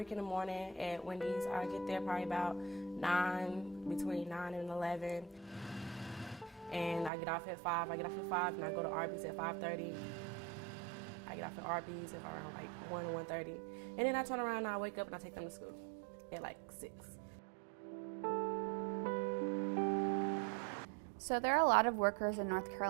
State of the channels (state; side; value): drops out; left; at 7.1 s